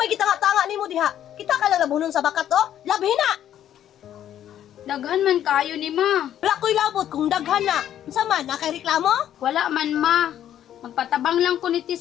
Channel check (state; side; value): quieter; right; 10.9 dB